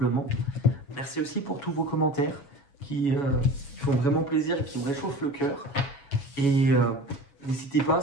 Merci aussi pour tous vos commentaires qui font vraiment plaisir et qui me réchauffent le cœur. Et n'hésitez pas,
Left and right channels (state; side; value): late; right; 7.2 ms